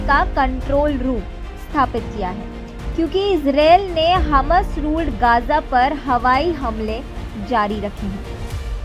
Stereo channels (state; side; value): identical; both; correlation 1.00